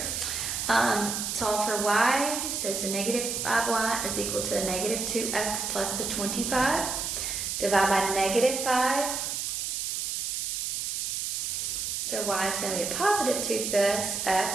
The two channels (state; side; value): noise; right; hiss, 2 dB below the sound